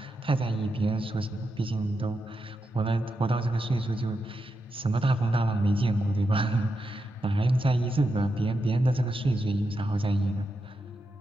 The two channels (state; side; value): normal; both; correlation 0.86